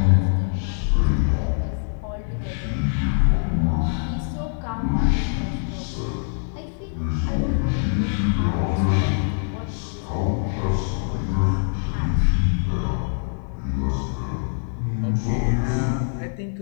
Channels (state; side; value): silent; right; digital silence